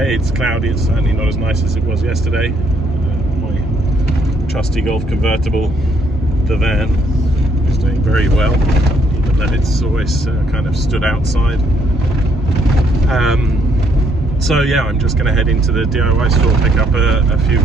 It's cloudy. It's certainly not as nice as it was yesterday. My trusty Golf convertible, the van, is doing very well, even though it's always kind of stood outside. So yeah, I'm just going to head into the DIY store, pick up a few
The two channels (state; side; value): normal; both; correlation 0.70